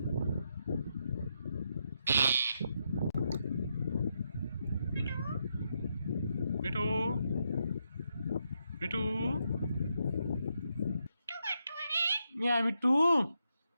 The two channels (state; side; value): inverted; both; correlation -0.81